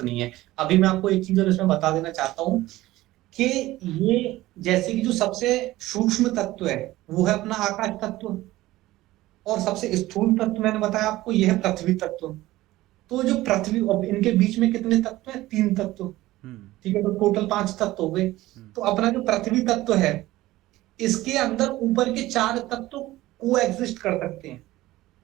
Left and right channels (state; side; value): quieter; left; 17.1 dB